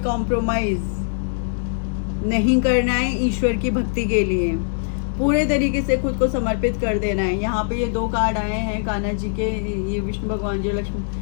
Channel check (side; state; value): right; silent; digital silence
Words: कॉम्प्रोमाइज नहीं करना है ईश्वर की भक्ति के लिए, पूरे तरीके से खुद को समर्पित कर देना है। यहाँ पे ये 2 कार्ड आए हैं कान्हा जी के, ये विष्णु भगवान जी,